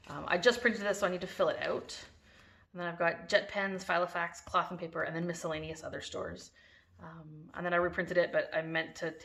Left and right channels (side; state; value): both; identical; correlation 1.00